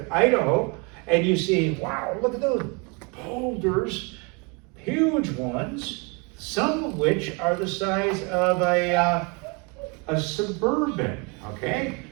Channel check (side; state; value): left; quieter; 31.5 dB